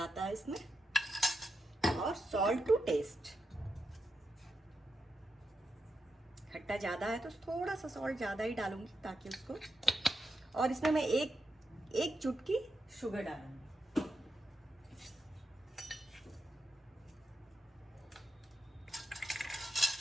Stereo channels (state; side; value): normal; both; correlation 0.86